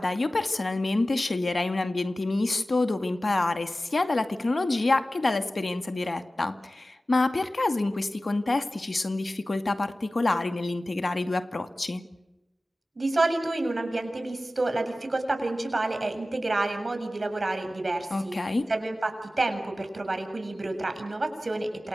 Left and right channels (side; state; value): both; normal; correlation 0.96